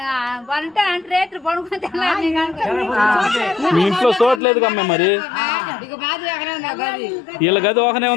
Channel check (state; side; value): drops out; right; at 4.4 s